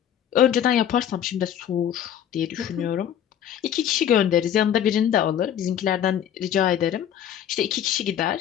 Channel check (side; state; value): right; quieter; 9.9 dB